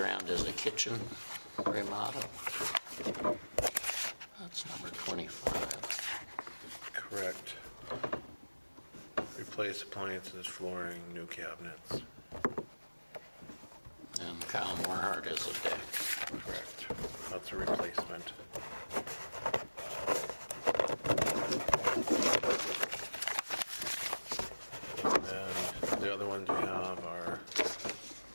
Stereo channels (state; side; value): inverted; both; correlation -1.00